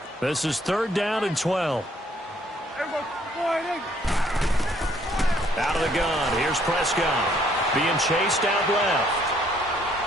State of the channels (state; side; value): normal; both; correlation 0.65